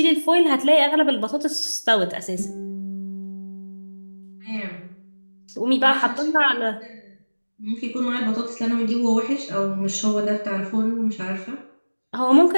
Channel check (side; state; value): both; inverted; correlation -1.00